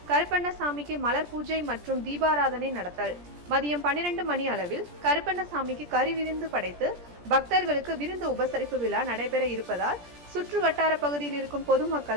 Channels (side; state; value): left; late; 17 ms